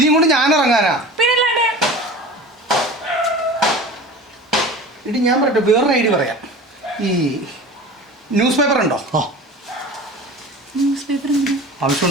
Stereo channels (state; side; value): normal; both; correlation 0.37